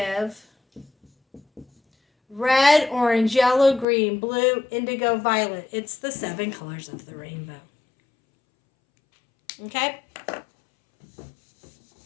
Red, orange, yellow, green, blue, indigo, violet. It's the 7 colors of the rainbow. Okay?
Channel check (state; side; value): drops out; right; at 3.9 s